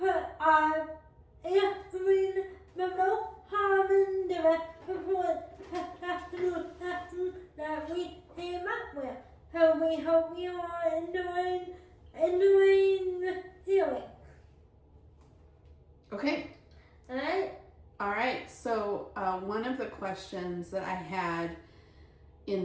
answering the most common direct support that we came up with. So we hope you are enjoying the healing. Okay. Alright? Alright, so one of the questions that I had in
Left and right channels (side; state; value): both; identical; correlation 1.00